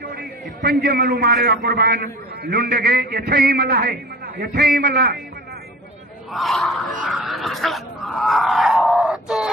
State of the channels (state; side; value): normal; both; correlation 0.40